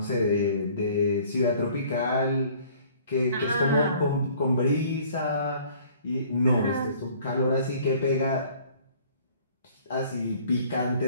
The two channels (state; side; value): inverted; both; correlation -0.54